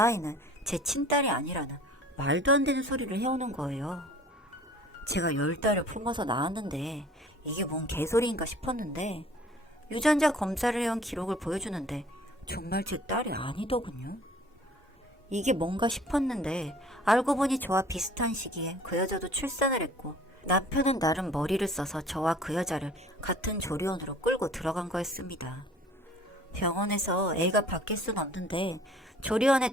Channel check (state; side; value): normal; both; correlation 0.50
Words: 제 친딸이 아니라는 말도 안 되는 소리를 해오는 거예요. 제가 10달을 품어서 낳았는데 이게 뭔 개소리인가 싶었는데 유전자 검사를 해온 기록을 보여주는데 정말 제 딸이 아니더군요. 이게 뭔가 싶었는데 알고 보니 저와 비슷한 시기에 그 여자도 출산을 했고 남편은 나름 머리를 써서 저와 그 여자를 같은 조리원으로 끌고 들어간 거였습니다. 병원에서 애가 바뀔 순 없는데 조리원에